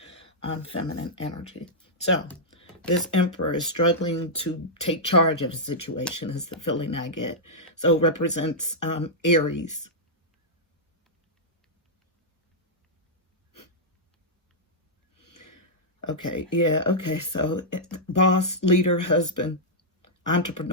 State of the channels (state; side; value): normal; both; correlation -0.08